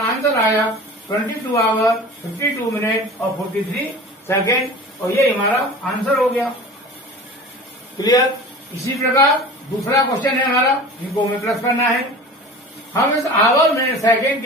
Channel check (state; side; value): normal; both; correlation 0.38